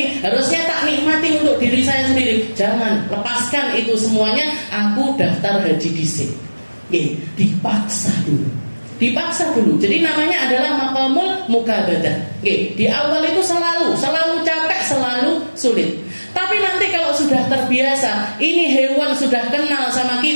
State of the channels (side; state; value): both; inverted; correlation -1.00